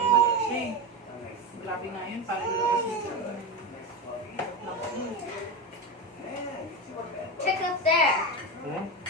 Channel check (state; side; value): normal; both; correlation 0.18